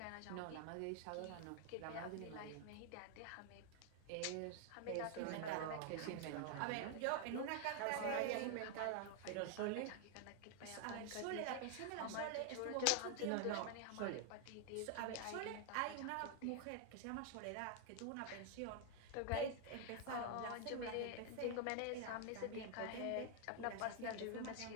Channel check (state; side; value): different; both; correlation 0.00